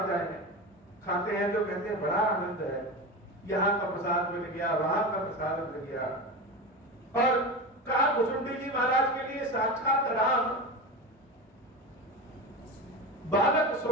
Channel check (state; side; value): normal; both; correlation 0.24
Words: जाए, खाते हैं तो कहते हैं बड़ा आनंद है, यहाँ का प्रसाद मिल गया, वहां का प्रसाद मिल गया। और कहा भुजुंडी जी महाराज के लिए साक्षात राम बालक